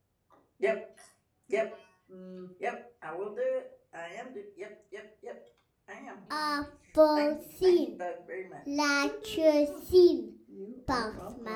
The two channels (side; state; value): both; identical; correlation 1.00